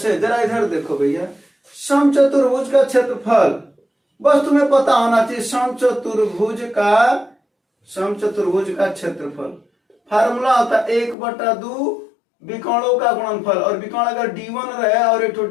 जरा इधर देखो भैया, समचतुर्भुज का क्षेत्रफल बस तुम्हें पता होना चाहिए, समचतुर्भुज का क्षेत्रफल फार्मूला होता है 1/2 विकोणों का गुणनफल, और विकोण अगर D1 रहे और एक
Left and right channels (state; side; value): drops out; right; at 11.2 s